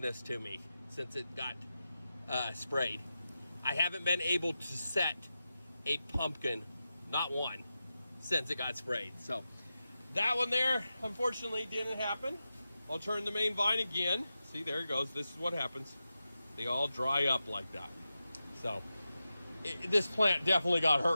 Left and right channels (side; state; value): both; inverted; correlation -0.92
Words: to me since it got sprayed. I haven't been able to set a pumpkin, not one, since it got sprayed. So that one there, unfortunately, didn't happen. I'll turn the main vine again. See, there it goes. This is what happens. They all dry up like that. So this plant definitely got